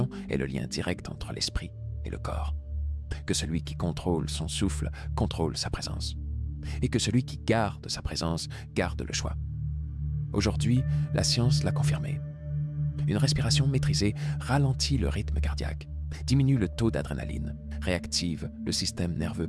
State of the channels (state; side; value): identical; both; correlation 1.00